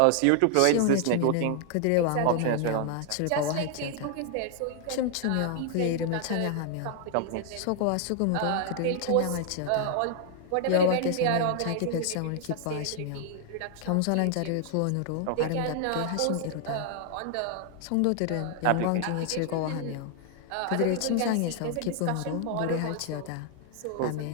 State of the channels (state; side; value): different; both; correlation 0.00